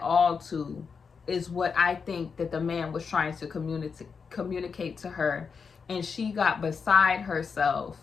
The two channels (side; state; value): right; quieter; 5.7 dB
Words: all to, is what I think that the man was trying to communicate to her. And she got beside herself